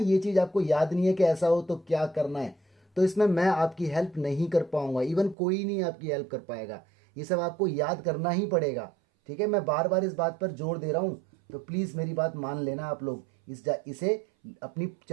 चीज आपको याद नहीं है कि ऐसा हो तो क्या करना है, तो इसमें मैं आपकी हेल्प नहीं कर पाऊंगा, इवन कोई नहीं आपकी हेल्प कर पाएगा, ये सब आपको याद करना ही पड़ेगा। ठीक है, मैं बार बार इस बात पर जोर दे रहा हूं, तो प्लीज मेरी बात मान लेना आप लोग, इसे अपनी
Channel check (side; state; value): left; drops out; at 5.4 s